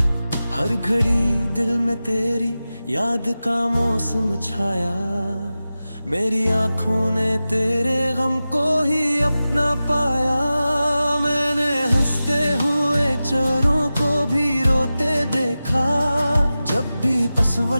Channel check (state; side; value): inverted; both; correlation -0.95